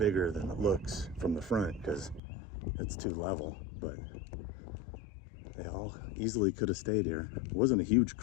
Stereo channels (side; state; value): right; drops out; at 2.2 s